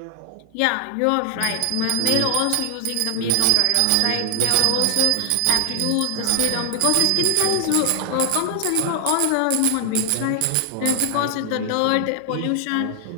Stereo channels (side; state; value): both; different; correlation 0.00